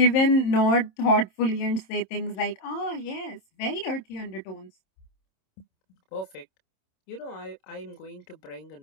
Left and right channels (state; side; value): late; right; 26 ms